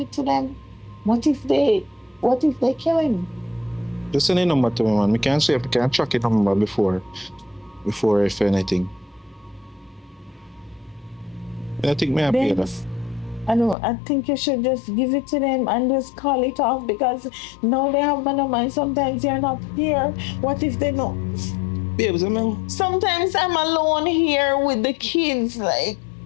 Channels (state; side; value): drops out; right; at 13.8 s